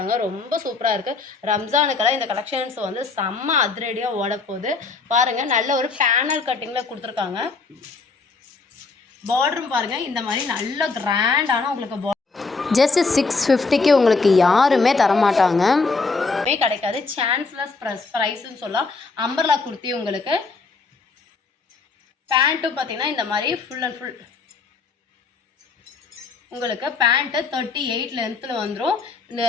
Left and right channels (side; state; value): right; quieter; 4.2 dB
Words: ரொம்ப சூப்பராக இருக்குது. ரம்ஜானுக்கெல்லாம் இந்த கலெக்ஷன்ஸ் வந்து செம்ம அதிரடியாக ஓடப்போகுது. பாருங்கள் நல்ல ஒரு பேனல் கட்டிங்கில் கொடுத்துருக்காங்க. பார்டரும் பாருங்கள் இந்த மாதிரி நல்ல கிராண்டான உங்களுக்கு ஜஸ்ட் 650க்கு உங்களுக்கு யாருமே தரமாட்டாங்க, கிடைக்காது. சான்ஸ்லெஸ் ப்ரைஸ்ன்னு சொல்லலாம். அம்பர்லா குர்த்தி உங்களுக்கு. பேண்ட்டும் பார்த்தீங்கன்னா இந்த மாதிரி ஃபுல் அண்ட் ஃபுல் உங்களுக்கு பேண்ட்டு 38 லென்த்தில் வந்துடும். இந்த